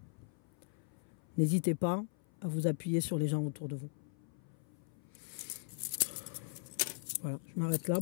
N'hésitez pas à vous appuyer sur les gens autour de vous. Voilà, je m'arrête là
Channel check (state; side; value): silent; right; 52 dB below the other